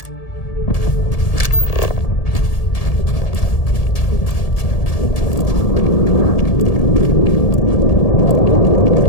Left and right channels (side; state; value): right; late; 1.8 ms